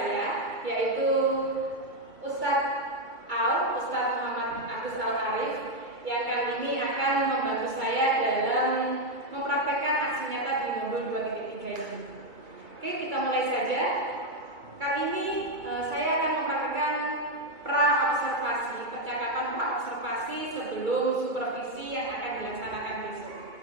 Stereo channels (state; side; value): late; left; 2.3 ms